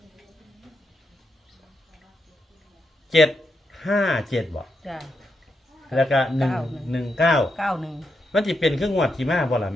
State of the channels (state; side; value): normal; both; correlation 0.83